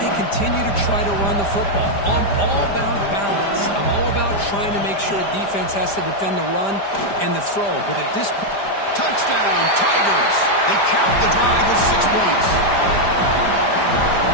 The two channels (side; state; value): right; late; 5.0 ms